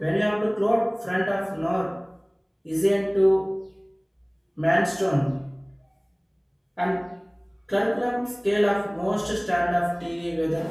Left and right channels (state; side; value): identical; both; correlation 1.00